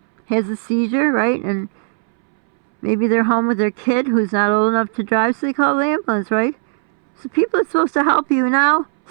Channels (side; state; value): left; silent; 66 dB below the other